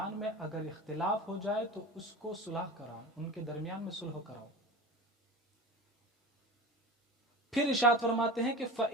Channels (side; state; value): both; normal; correlation 0.32